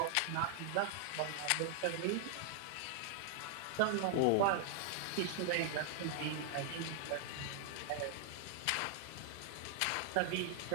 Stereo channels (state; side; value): different; both; correlation 0.00